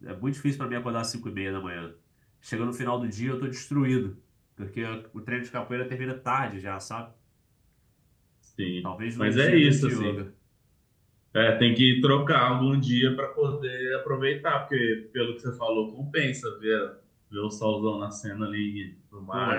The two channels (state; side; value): identical; both; correlation 1.00